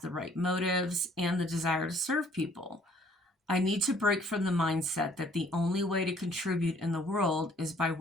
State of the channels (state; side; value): normal; both; correlation 0.59